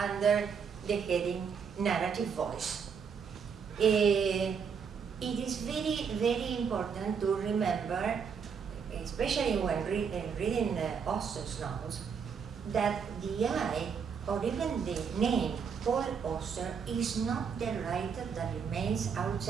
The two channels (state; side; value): quieter; left; 6.5 dB